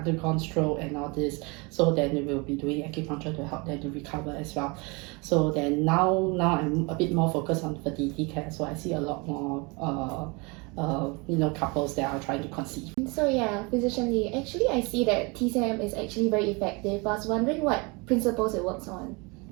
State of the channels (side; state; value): left; quieter; 28.5 dB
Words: stroke and all this. So then we will be doing acupuncture to help them to recover as well. So then now I'm a bit more focused on fertility care. So I see a lot more couples that are trying to conceive. So yeah, Physician Lee, actually I see that TCM is actually very effective. I was wondering what principles it works on.